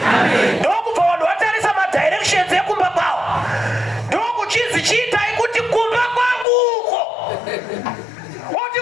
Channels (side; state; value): right; drops out; at 6.5 s